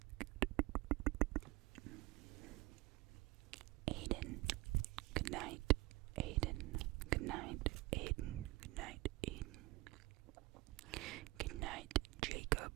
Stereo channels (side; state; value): left; quieter; 20.6 dB